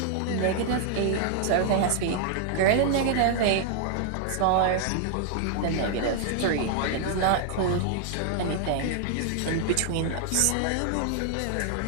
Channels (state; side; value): different; both; correlation 0.00